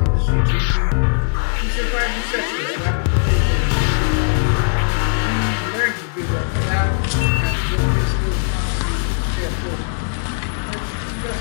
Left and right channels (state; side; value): silent; right; digital silence